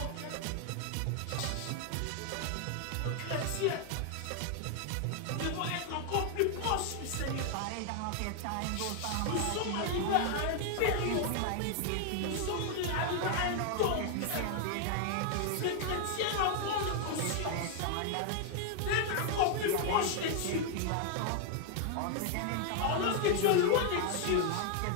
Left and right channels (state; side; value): different; both; correlation 0.00